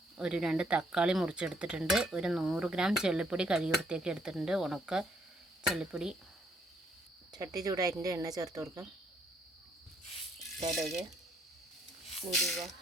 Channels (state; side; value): normal; both; correlation 0.69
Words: ഒരു 2 തക്കാളി മുറിച്ചെടുത്തിട്ടുണ്ട്, ഒരു 100 ഗ്രാം ചെള്ളിപ്പൊടി കഴുകി വൃത്തിയാക്കി എടുത്തിട്ടുണ്ട്, ഉണക്ക ചെള്ളിപ്പൊടി. ചട്ടി ചൂടായിട്ടുണ്ട്, എണ്ണ ചേർത്ത് കൊടുക്കാം. കടുക്, ഉലുവ,